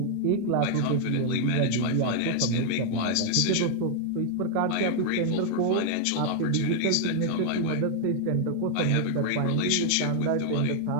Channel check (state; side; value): different; both; correlation 0.00